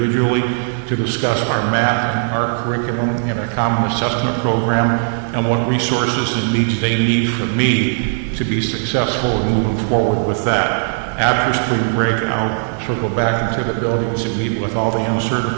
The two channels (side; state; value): left; silent; digital silence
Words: to discuss our math and art curriculum and our common assessment program and what resources and needs they need from me to be successful in moving forward with that. After spring break, I'll circle back into the buildings and meet with all the